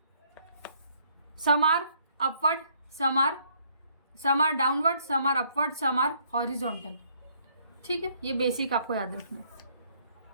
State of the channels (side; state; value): both; inverted; correlation -0.66